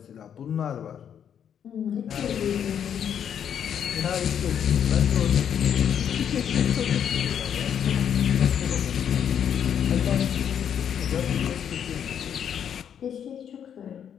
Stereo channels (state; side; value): quieter; right; 8.7 dB